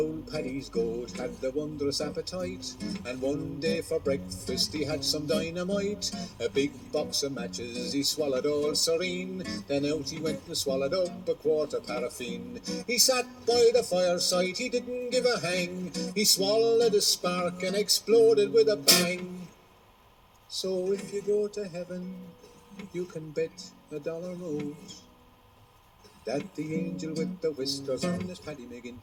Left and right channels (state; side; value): identical; both; correlation 1.00